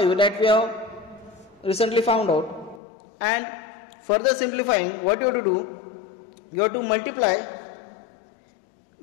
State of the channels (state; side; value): drops out; right; at 2.8 s